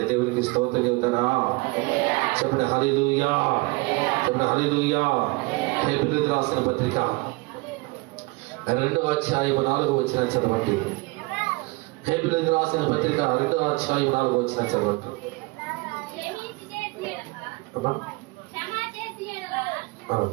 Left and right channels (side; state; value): left; quieter; 24.9 dB